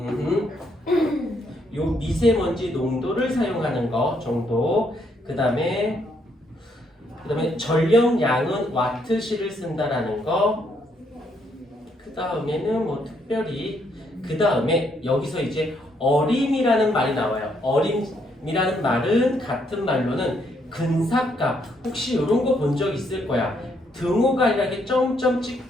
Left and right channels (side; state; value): both; normal; correlation 0.73